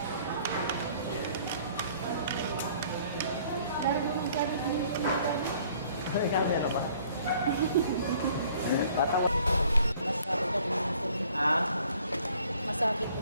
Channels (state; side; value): inverted; both; correlation -0.57